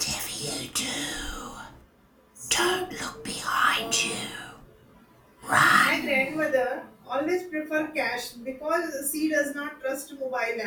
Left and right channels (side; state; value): both; identical; correlation 1.00